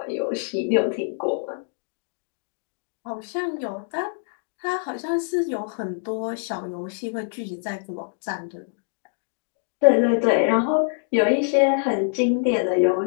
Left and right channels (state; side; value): silent; right; 62 dB below the other